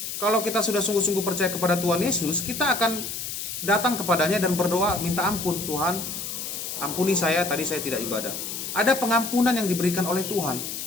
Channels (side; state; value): left; noise; hiss, 6 dB below the sound